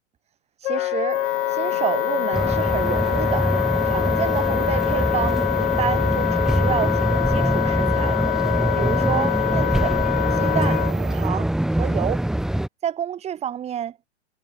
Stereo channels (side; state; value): both; normal; correlation 0.55